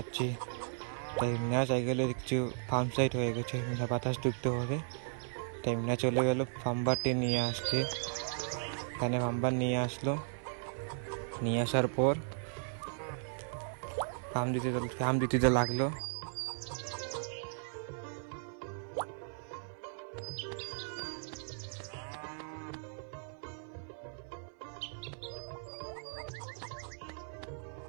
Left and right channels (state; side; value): silent; left; 54 dB below the other